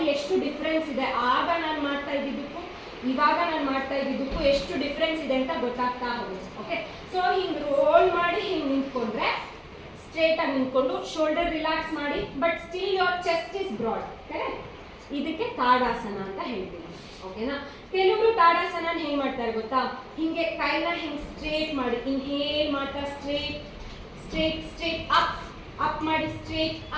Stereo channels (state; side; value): identical; both; correlation 1.00